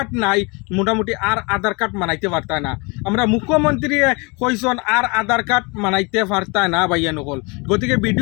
নাই মোটামুটি আর আধার কার্ড মানাইতে পারতা না আমরা মুখ্যমন্ত্রী কইসন আর আধার কার্ড মানাইতে পারতা না ভাইয়া নকল গতিকে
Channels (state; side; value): quieter; right; 28.9 dB